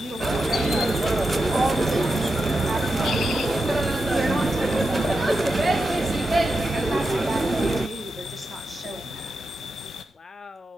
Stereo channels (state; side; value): normal; both; correlation 0.88